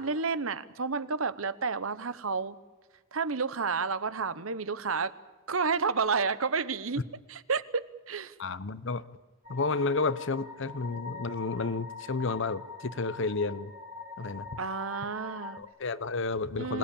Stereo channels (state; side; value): normal; both; correlation -0.20